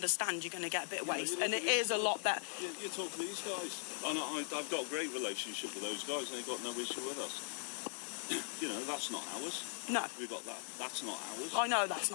You're going to get a bit of waste, and it is a lot better. You talk to these guys, and I've got a great relationship with those guys, and they've got no issue with us. You know, that's not ours. No, We've got that. That's not ours. I know that's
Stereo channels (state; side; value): silent; right; digital silence